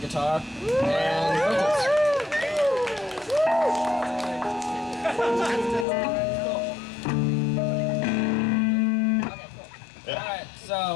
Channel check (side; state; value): right; drops out; at 5.9 s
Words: and vocals. Alright, so